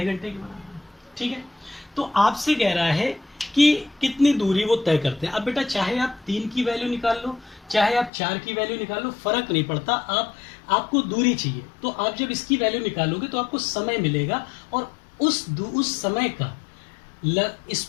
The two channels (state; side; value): drops out; right; at 8.1 s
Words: घंटे के बराबर। ठीक है। तो आपसे कह रहा है कि कितनी दूरी वो तय करते हैं। अब बेटा चाहे आप 3 की वैल्यू निकाल लो, चाहे आप 4 की वैल्यू निकाल लो, फर्क नहीं पड़ता, आपको दूरी चाहिए। तो आप जब इसकी वैल्यू निकालोगे तो आपको समय मिलेगा, और उस समय का